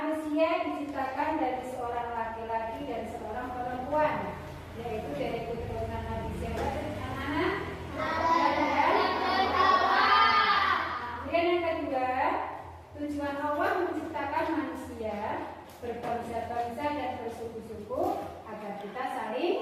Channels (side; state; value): both; identical; correlation 1.00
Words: diciptakan dari seorang laki-laki dan seorang perempuan, yaitu dari keturunan Nabi siapa anak-anak? Kemudian yang kedua, tujuan Allah menciptakan manusia berbangsa-bangsa dan bersuku-suku agar kita